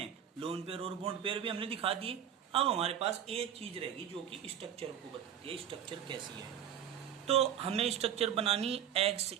लोन पेयर और बॉन्ड पेयर भी हमने दिखा दिए। अब हमारे पास एक चीज रहेगी जो कि स्ट्रक्चर को बताती है, स्ट्रक्चर कैसी है। तो हमें स्ट्रक्चर बनानी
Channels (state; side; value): quieter; left; 9.4 dB